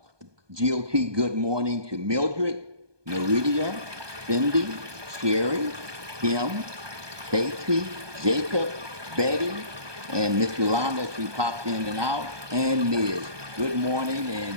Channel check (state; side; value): late; left; 1.2 ms